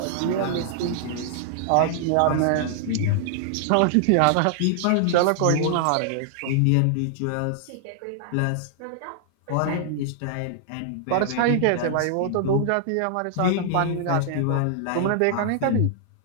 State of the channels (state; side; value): different; both; correlation -0.01